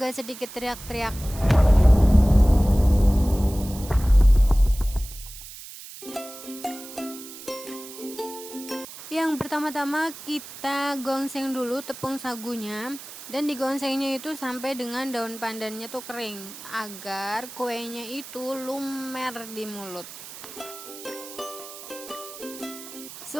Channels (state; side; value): noise; right; hiss, 14 dB below the sound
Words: sedikit teriak-teriak. Yang pertama-tama kita gongseng dulu tepung sagunya. Dan digongsengnya itu sampai dengan daun pandannya tuh kering, agar kuenya itu lumer di mulut.